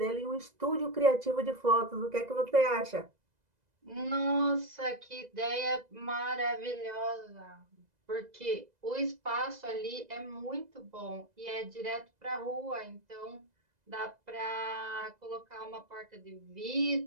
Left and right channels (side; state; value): left; late; 2.0 ms